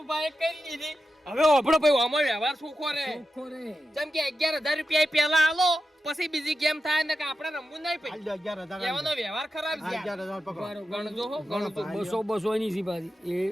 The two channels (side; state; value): both; normal; correlation 0.90